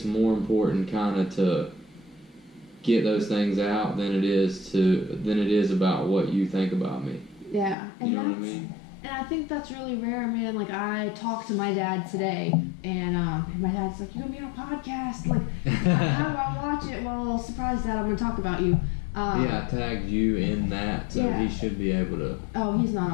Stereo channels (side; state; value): right; drops out; at 7.8 s